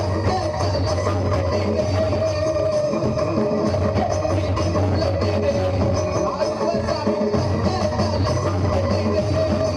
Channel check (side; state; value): both; identical; correlation 1.00